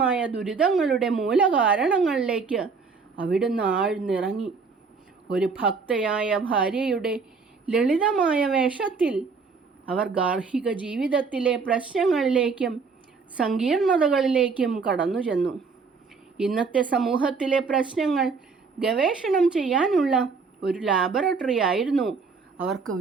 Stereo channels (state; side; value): quieter; left; 4.9 dB